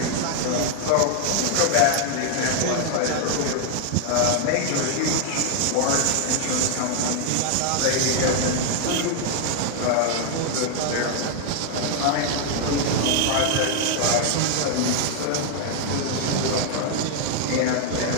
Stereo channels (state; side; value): different; both; correlation 0.00